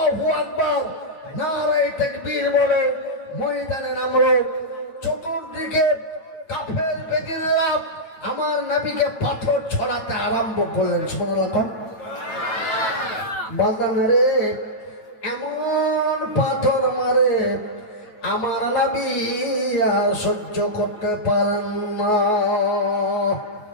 আকবার নারে তাকবীর বলে ময়দানে নামলো, চতুর্দিকে কাফের বেদিনেরা আমার নবীকে পাথর ছড়াতে আরম্ভ করলেন। সুবহানাল্লাহ। বাজান রে, এমন পাথর মারে আমার নবী সহ্য করতে পারেন না।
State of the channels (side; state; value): right; late; 9.0 ms